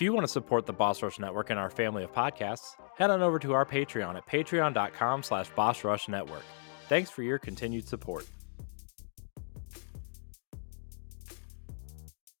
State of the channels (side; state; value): right; silent; digital silence